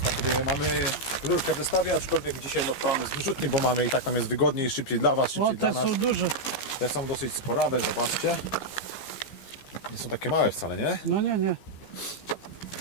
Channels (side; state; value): right; late; 15 ms